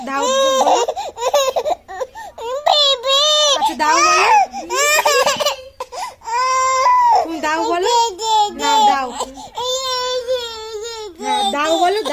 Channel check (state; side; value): identical; both; correlation 1.00